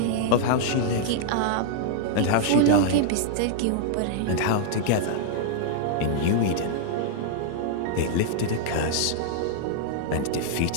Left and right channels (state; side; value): different; both; correlation -0.01